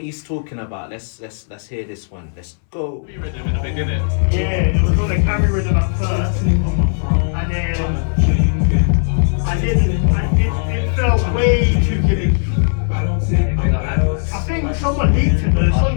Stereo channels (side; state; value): right; silent; 66 dB below the other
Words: talking about. Let's hear this one. Let's go. Rhythm in the beginning. Yeah, it was on a carry rhythm at first, and then it felt way too gimmicky. I think someone leaked it though. It's